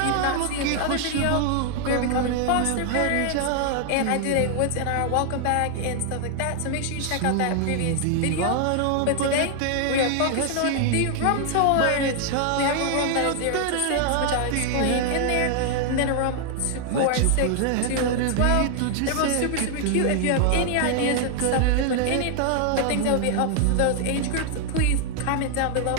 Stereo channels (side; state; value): both; different; correlation 0.00